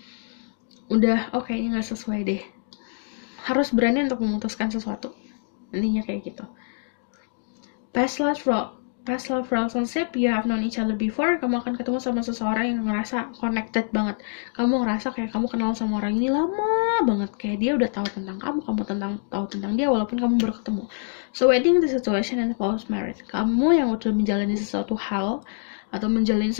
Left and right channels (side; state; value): right; silent; digital silence